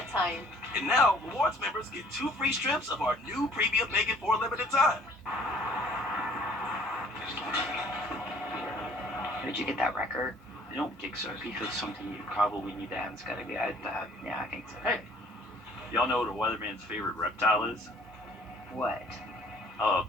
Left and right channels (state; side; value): normal; both; correlation 0.57